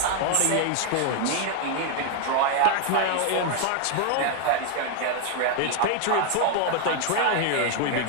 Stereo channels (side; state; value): both; different; correlation 0.01